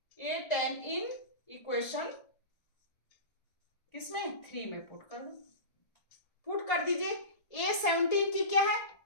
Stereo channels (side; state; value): right; late; 1.7 ms